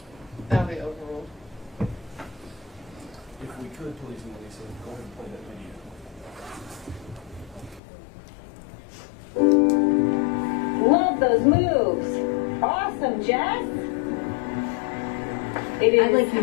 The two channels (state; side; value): drops out; right; at 7.8 s